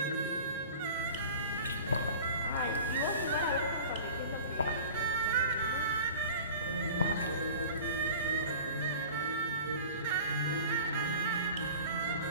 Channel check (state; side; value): inverted; both; correlation -0.40